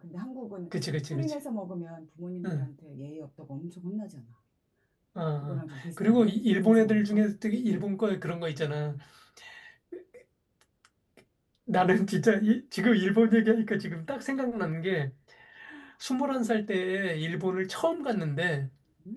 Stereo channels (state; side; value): identical; both; correlation 1.00